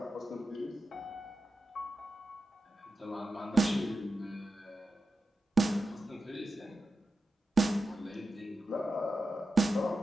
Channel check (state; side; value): normal; both; correlation 0.91